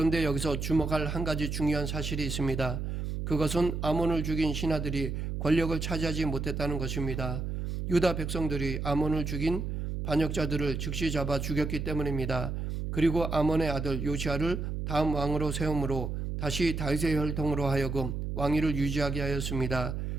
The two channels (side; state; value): right; noise; hum, 3 dB below the sound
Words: 여기서 주목할 한 가지 중요한 사실이 있습니다. 그것은 아몬을 죽인 신하들이 권력을 차지하지 못했다는 것입니다. 유다 백성들이 아몬을 죽인 반역자들을 즉시 잡아 죽였기 때문입니다. 그리고 아몬의 아들 요시아를 다음 왕으로 세움으로 다시 다윗의 혈통으로 하여금 왕위를 유지하게 하였습니다.